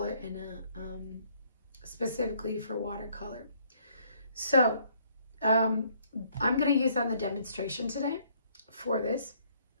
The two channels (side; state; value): both; inverted; correlation -0.65